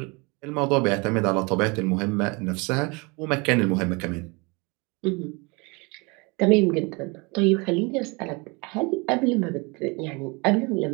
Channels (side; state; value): left; quieter; 28.4 dB